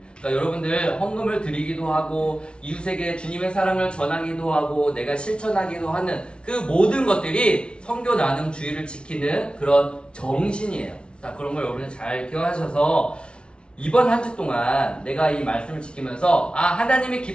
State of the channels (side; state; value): right; late; 0.057 ms